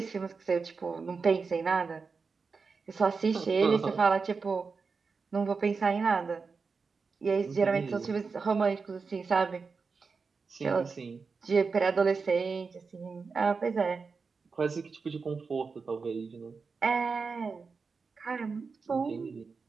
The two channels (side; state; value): left; quieter; 4.8 dB